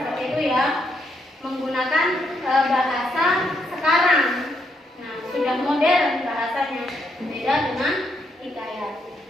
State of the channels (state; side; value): normal; both; correlation 0.77